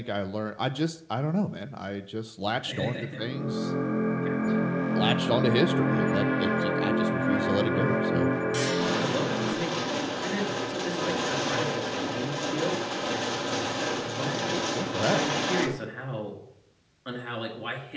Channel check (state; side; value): identical; both; correlation 1.00